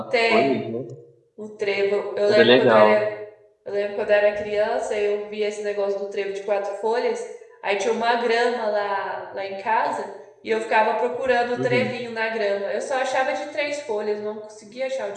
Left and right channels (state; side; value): identical; both; correlation 1.00